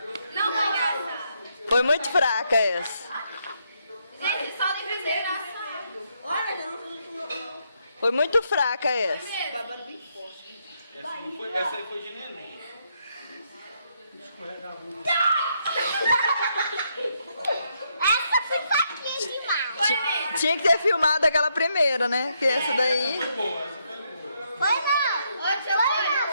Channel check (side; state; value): both; inverted; correlation -0.76